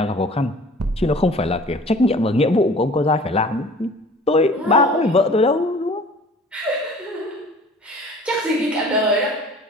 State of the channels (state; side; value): normal; both; correlation 0.47